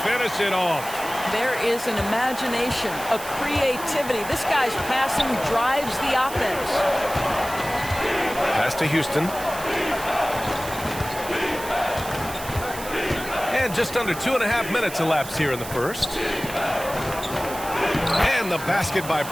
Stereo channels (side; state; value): right; noise; hiss, 12 dB below the sound